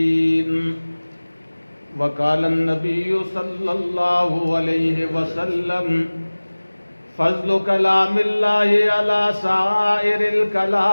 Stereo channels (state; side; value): inverted; both; correlation -1.00